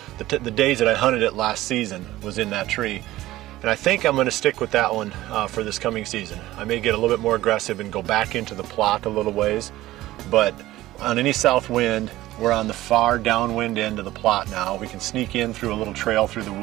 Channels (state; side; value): quieter; left; 16.2 dB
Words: the days that I hunted it last season was in that tree. And I think I'm going to stick with that one for this coming season. I may get a little bit more aggressive and go back into the plot a little ways, but on any south wind, we're on the far downwind end of the plot now. We can sneak in through a little trail through the